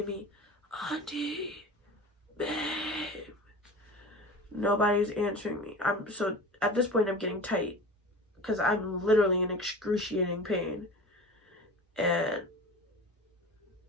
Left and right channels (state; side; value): normal; both; correlation 0.35